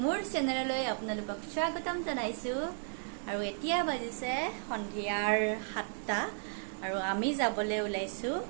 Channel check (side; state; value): left; silent; digital silence